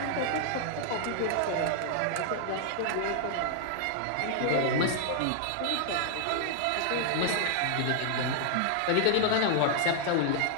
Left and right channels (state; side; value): different; both; correlation -0.01